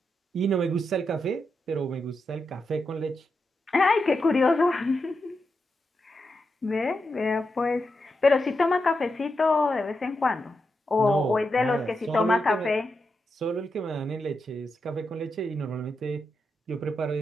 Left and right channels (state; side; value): normal; both; correlation 0.86